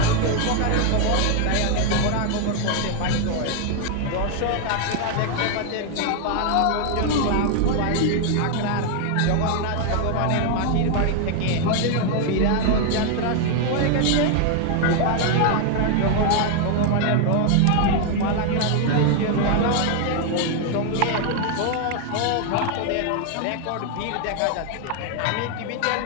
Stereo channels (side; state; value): both; different; correlation 0.00